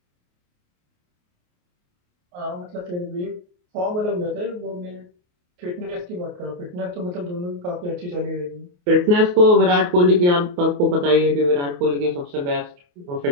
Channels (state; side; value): late; left; 28 ms